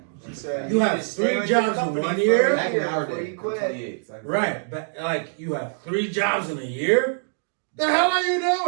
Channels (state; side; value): silent; left; digital silence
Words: She said You need have to stay 3 with your jobs in company 1 for year? a Back in our before day, you I'm quit. 28. Exactly. Right, but like you have 3 jobs in a year? The hell are you